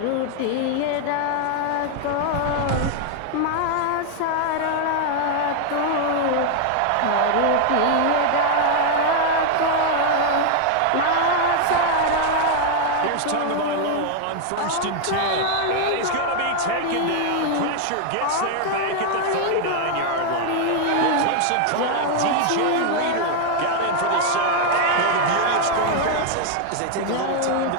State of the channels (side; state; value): both; different; correlation 0.00